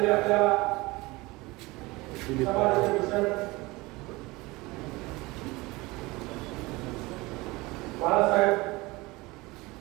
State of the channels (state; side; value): quieter; left; 22.3 dB